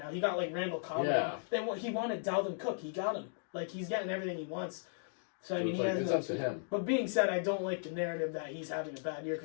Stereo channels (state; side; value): silent; right; digital silence